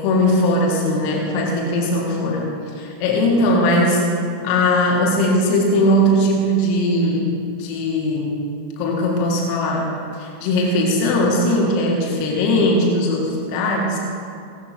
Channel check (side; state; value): right; late; 37 ms